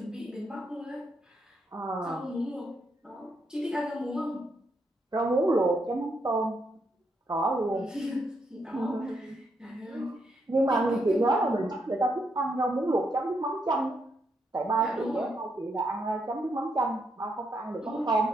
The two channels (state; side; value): normal; both; correlation 0.78